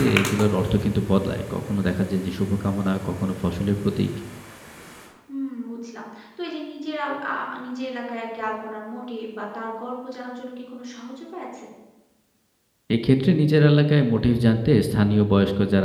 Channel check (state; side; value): identical; both; correlation 1.00